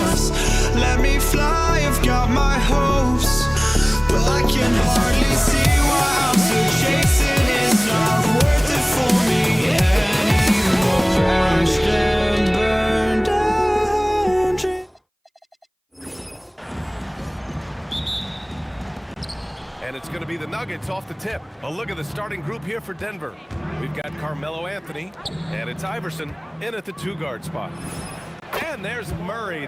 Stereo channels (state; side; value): identical; both; correlation 1.00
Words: Let me fly, I've got my hopes, but I can hardly see why I'm still chasing. It's not worth it for me anymore. Crashed and burned down dreams. And it's going to be the Nuggets off the tip. A look at the starting group here for Denver. We've got Carmelo Anthony, and it's Iverson in at the two-guard spot. And there's Murray.